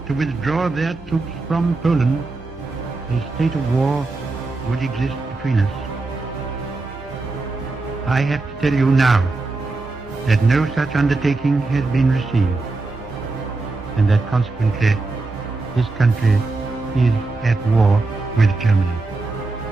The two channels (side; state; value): left; quieter; 3.5 dB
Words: to withdraw their troops from Poland, a state of war would exist between us. I have to tell you now that no such undertaking has been received, and that consequently this country is at war with Germany.